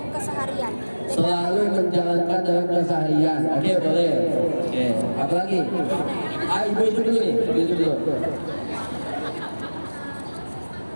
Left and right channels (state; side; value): inverted; both; correlation -1.00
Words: keseharian. Selalu menjalankan dalam keseharian. Oke, boleh. Oke, apa lagi? Ibu itu dulu nih. Ibu itu dulu.